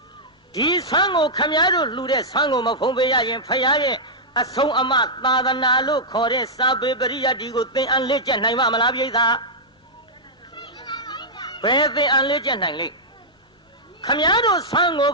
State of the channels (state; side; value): normal; both; correlation -0.09